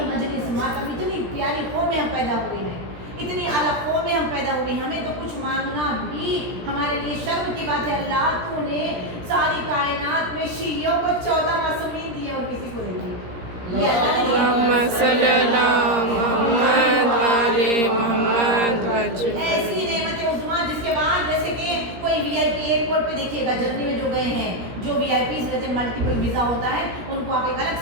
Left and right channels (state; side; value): late; left; 17 ms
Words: مجلس ماتم اتنی پیاری قوم میں ہم پیدا ہوئے ہیں، اتنی اعلیٰ قوم میں ہم پیدا ہوئے ہیں، ہمیں تو کچھ مانگنا بھی ہمارے لیے شرم کی بات ہے۔ اللہ تو نے ساری کائنات میں شیعوں کو 14 معصومین دیے اور کسی کو نہیں دیے، یہ اللہ نے محمد صلی اللہ محمد علی محمد وجہ ایسی نعمت عظمیٰ جس کے بعد جیسے کہ کوئی وی آئی پی ایئرپورٹ پہ دیکھیے گا، جرنی میں جو گئے ہیں، جو وی آئی پیز رہتے ہیں، ملٹیپل ویزا ہوتا ہے، ان کو آپ ایک